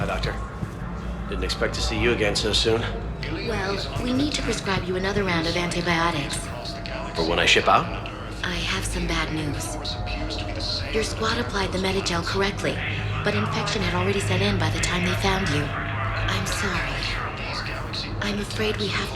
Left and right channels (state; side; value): identical; both; correlation 1.00